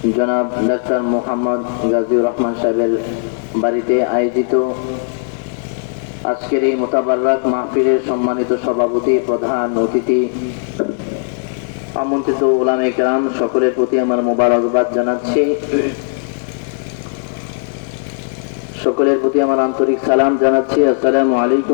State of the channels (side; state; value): right; silent; digital silence